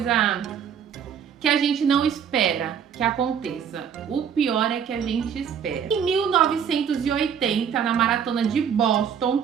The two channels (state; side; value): quieter; left; 7.9 dB